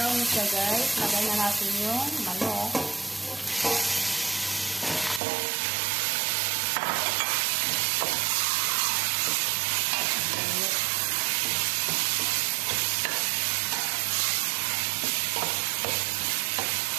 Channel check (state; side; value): drops out; left; at 5.2 s